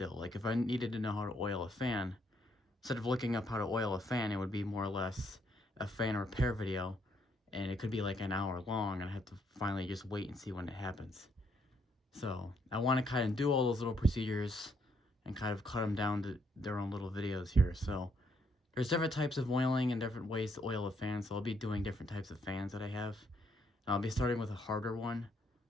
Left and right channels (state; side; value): normal; both; correlation 0.72